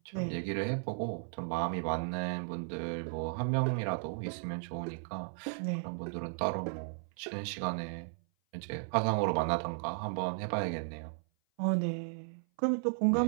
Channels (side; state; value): left; silent; 54 dB below the other